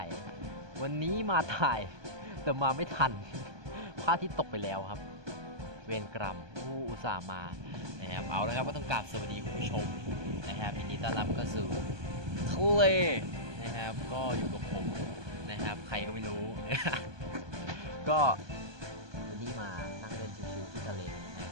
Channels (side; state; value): left; late; 1.2 ms